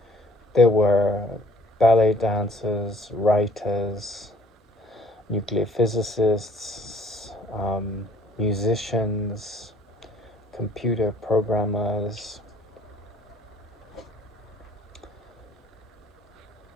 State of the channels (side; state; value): both; normal; correlation 0.58